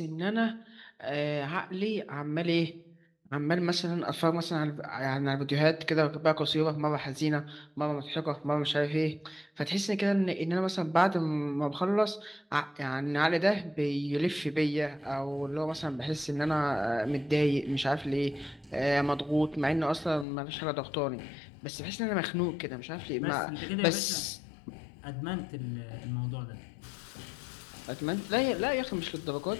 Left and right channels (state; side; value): drops out; right; at 20.2 s